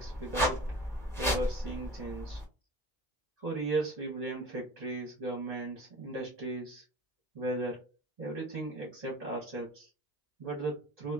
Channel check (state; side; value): normal; both; correlation 0.41